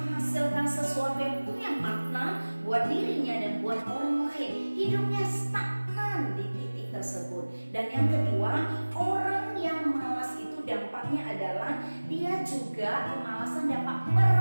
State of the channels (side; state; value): both; inverted; correlation -1.00